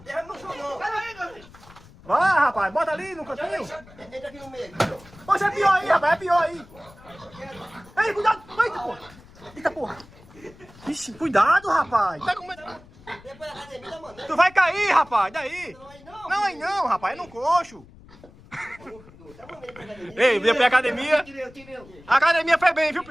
Deixa no chão, não. Cadê aí, Davi? Vai, rapaz. Bota ali no cantinho. Entra aqui no meio. Poxa, é pior aí, rapaz. É pior aí. Ei, cuidado. Eita, porra. Eita, porra. Ixi, cuidado, rapaz. Tá com medo. Depois da academia, mano. Tu vai cair, rapaz. Daí. Não, Não, aí não, rapaz. É no coxo. Tá bom, ele pra academia. Ei, veio pra academia. Tirei. A academia foi bem, viu,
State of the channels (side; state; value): left; noise; rumble, 23 dB below the sound